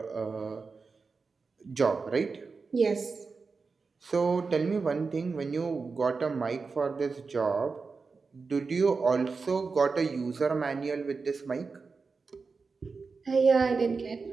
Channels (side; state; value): left; quieter; 4.6 dB